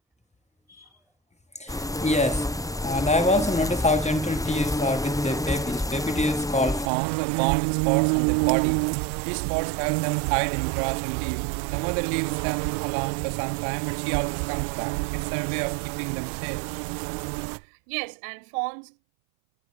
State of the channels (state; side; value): drops out; left; at 6.9 s